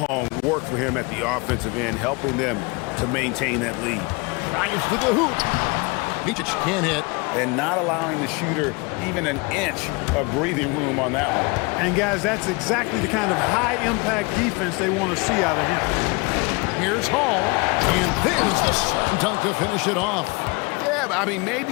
work for him at the offensive end, helping them to maintain that lead. Drives to the hoop. Micic can't hit. And not allowing the shooter even an inch of breathing room on that one. And guys, that's exactly the kind of high-impact defense they want to see out of him. Here's Hall. And there's the slam dunk to finish it off. Yeah, I mean,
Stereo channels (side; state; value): right; quieter; 27.8 dB